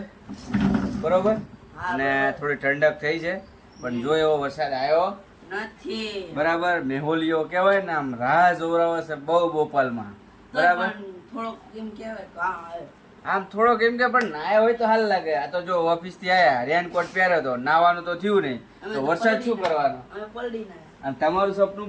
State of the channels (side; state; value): both; identical; correlation 1.00